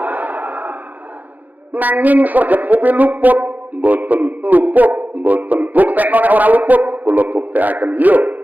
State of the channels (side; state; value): left; late; 0.082 ms